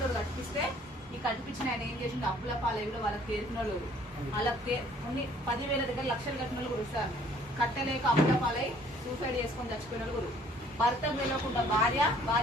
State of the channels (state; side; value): normal; both; correlation 0.58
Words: కట్టిస్తే ఈ కట్టిపించిన ఆయన ఏం చేసింది? అప్పుల పాలై కూడా వాళ్ళకి తేరిన వాళ్ళు, వాళ్ళకి కొన్ని 10,000 దగ్గర లక్షలు కట్టిన వాళ్ళు కూడా సార్. కట్టలేక అప్పుల పాలై సూసైడ్ చేసుకొని చచ్చిపోయిన వాళ్ళు కూడా. భర్త తెలియకుండా భార్య